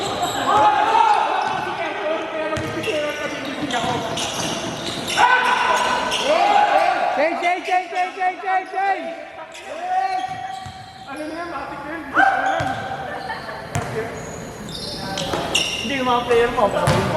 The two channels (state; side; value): identical; both; correlation 1.00